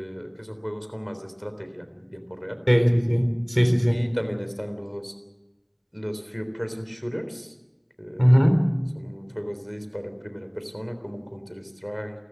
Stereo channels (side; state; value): both; identical; correlation 1.00